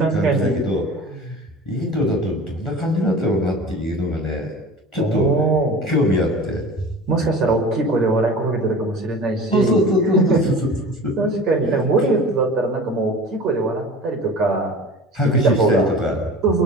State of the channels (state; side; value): normal; both; correlation 0.38